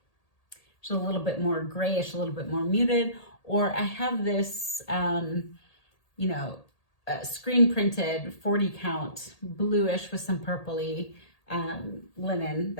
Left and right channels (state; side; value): late; right; 1.8 ms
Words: is a little bit more grayish, a little bit more muted, or I have this, you know, screen printed 40 count bluish with some purpley linen